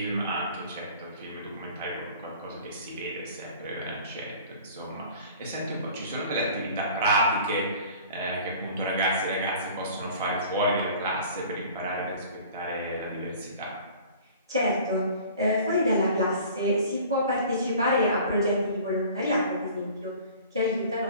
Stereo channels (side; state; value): both; inverted; correlation -0.46